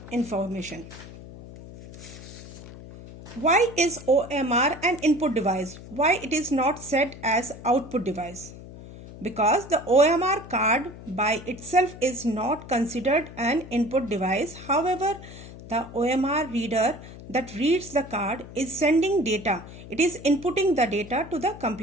information. Why is OMR an input device? Why it is not set as output device? Because the OMR card by itself is not considered an input device. However, the OMR reader that reads the card is sending data. It is inputting the data to the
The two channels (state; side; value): noise; left; hum, 15 dB below the sound